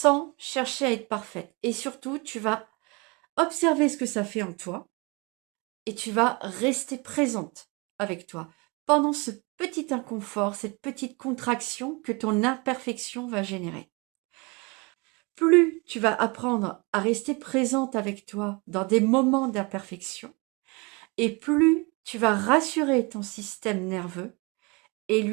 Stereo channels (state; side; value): quieter; left; 28.6 dB